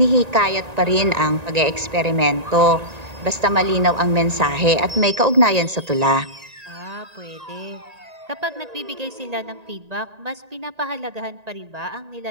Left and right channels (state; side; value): late; left; 1.9 ms